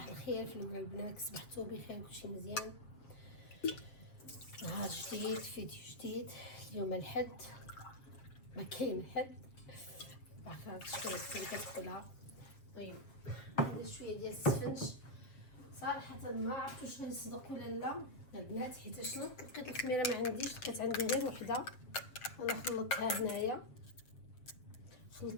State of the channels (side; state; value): right; late; 7.5 ms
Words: الخير في الاول البنات، صبحتوا بخير، كلشي مزيان. نهار جديد، فيديو جديد. اليوم الحد، ما كاين حد، عارفه شويه كتقولها. طيب ندير شويه ديال السفنج. صراحه ما عرفت واش غنصدق ولا لا البنات، حيت شنو لقيت الخميره ما عنديش، لقيت عندي غير وحده. انا خلطتها هنايا،